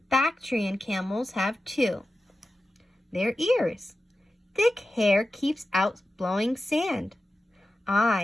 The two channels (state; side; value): normal; both; correlation 0.93